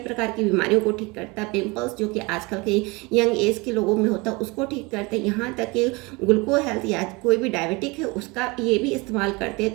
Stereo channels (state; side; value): quieter; left; 25.8 dB